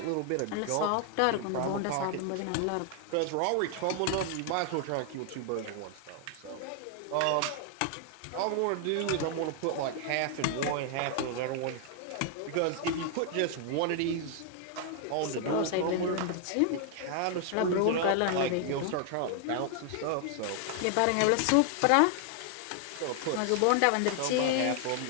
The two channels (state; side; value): different; both; correlation 0.00